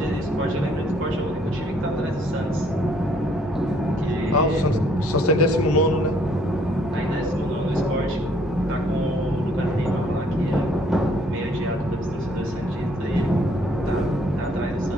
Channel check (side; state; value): both; normal; correlation 0.63